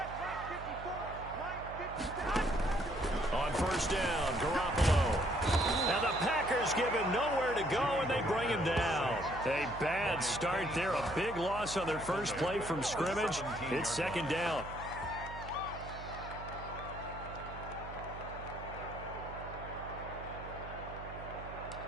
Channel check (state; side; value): noise; right; hum, 12 dB below the sound